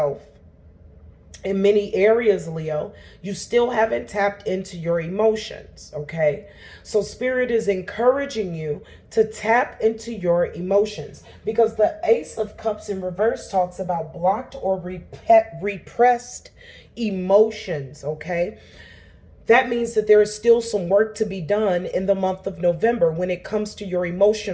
in many areas, Leo, you still haven't tapped into your emotions, okay? So Spirit is encouraging you to tap into your emotions, because the Ace of Cups in reverse talks about blocked or repressed emotions, okay? That means that there is still some work to be done in the month of November when it comes to your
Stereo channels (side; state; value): both; identical; correlation 1.00